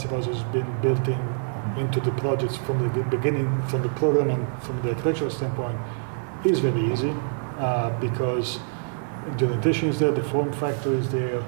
house has been built into the projects from the beginning, from the program and from the architectural standpoint, is very easy because the orientation is there, the form factor is there,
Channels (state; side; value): silent; left; digital silence